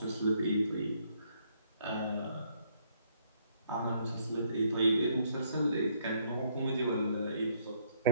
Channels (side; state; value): both; inverted; correlation -0.70